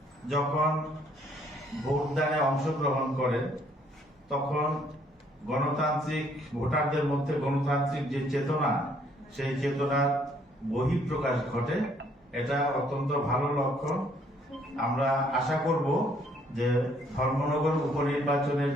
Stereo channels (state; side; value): normal; both; correlation 0.65